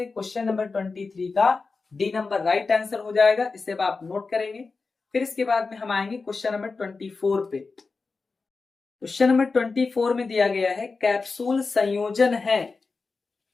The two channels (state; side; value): quieter; right; 4.2 dB